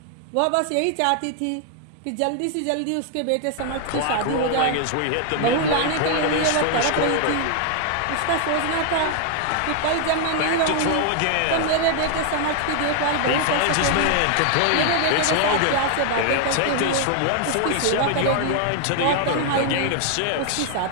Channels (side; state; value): both; different; correlation 0.00